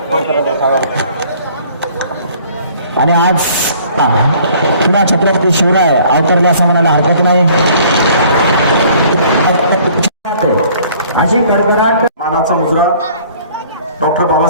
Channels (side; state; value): both; inverted; correlation -0.55